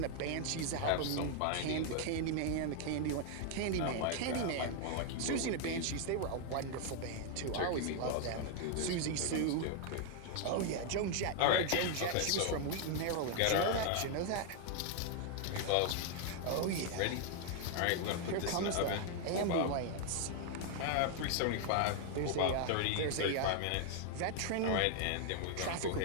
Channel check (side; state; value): both; different; correlation 0.00